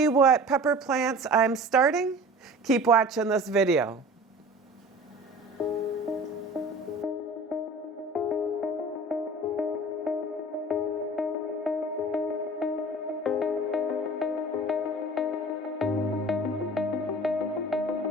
what pepper plants I'm starting, keep watching this video.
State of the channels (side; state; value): both; normal; correlation 0.41